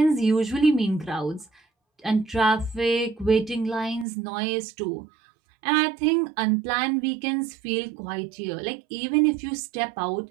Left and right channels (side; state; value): left; drops out; at 4.0 s